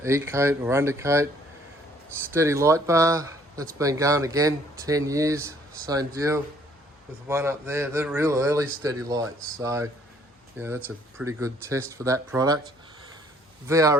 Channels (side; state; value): both; normal; correlation 0.62